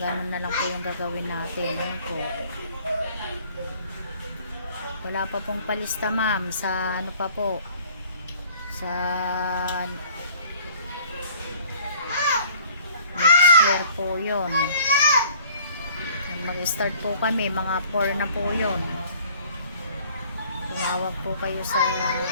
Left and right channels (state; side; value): inverted; both; correlation -0.54